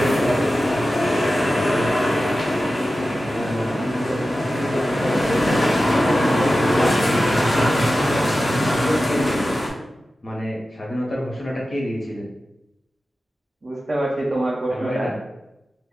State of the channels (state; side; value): normal; both; correlation 0.94